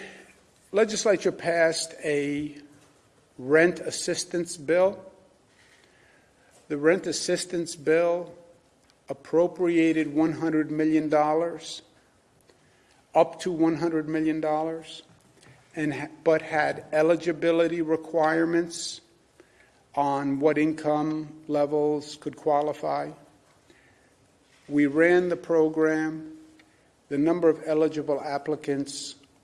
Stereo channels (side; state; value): both; identical; correlation 1.00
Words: legislature passed a rent assistance bill. The rent assistance bill appropriated $100 million, up to $100 million, but had eligibility requirements on what income levels could qualify. We ran the program. The number of eligible applicants